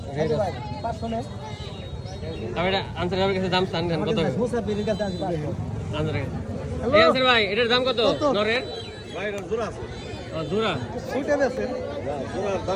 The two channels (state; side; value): identical; both; correlation 1.00